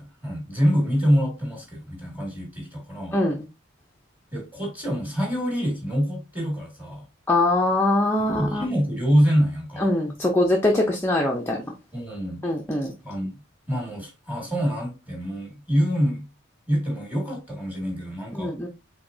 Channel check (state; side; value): normal; both; correlation 0.83